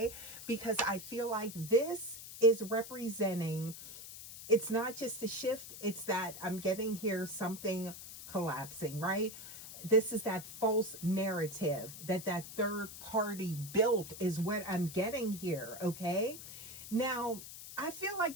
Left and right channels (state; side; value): noise; left; hiss, 12 dB below the sound